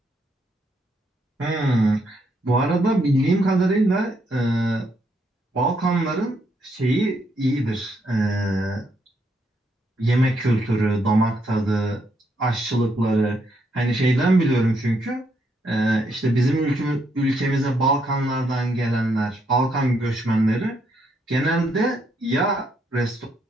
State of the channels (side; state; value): both; normal; correlation 0.75